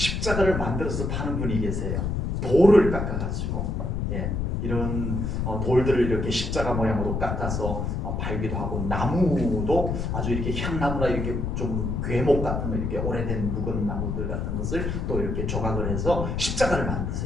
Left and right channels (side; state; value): left; noise; rumble, 1 dB below the sound